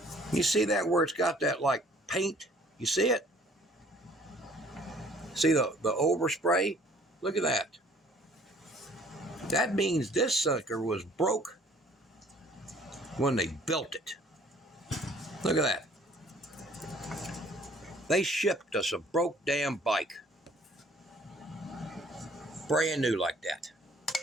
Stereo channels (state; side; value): normal; both; correlation 0.57